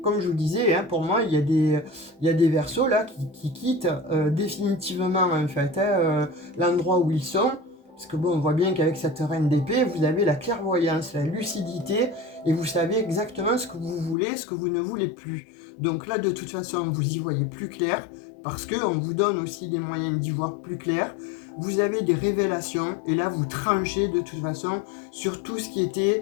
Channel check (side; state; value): right; drops out; at 14.2 s